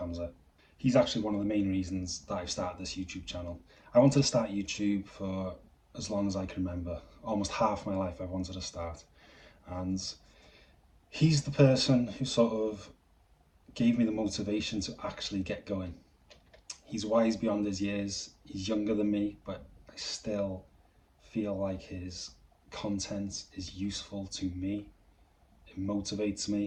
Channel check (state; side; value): identical; both; correlation 1.00